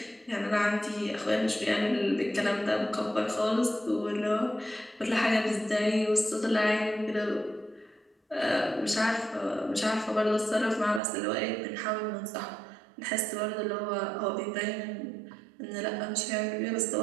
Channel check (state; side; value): drops out; left; at 11.0 s